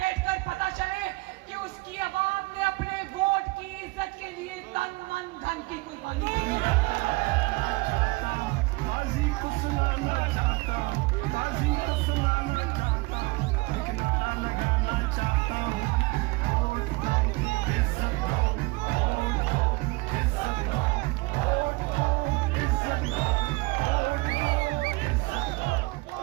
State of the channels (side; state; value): left; quieter; 24.5 dB